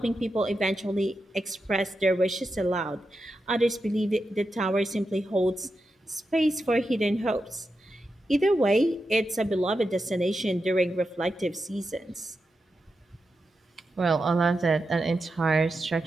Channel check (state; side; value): normal; both; correlation 0.88